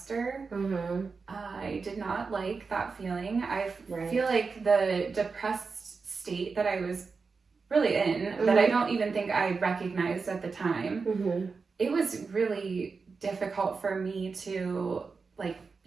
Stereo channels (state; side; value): quieter; left; 4.7 dB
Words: I did not like that feeling. I feel like the depressed state that I was really in, that I don't even think I recognized at the time, it was really difficult for me to like,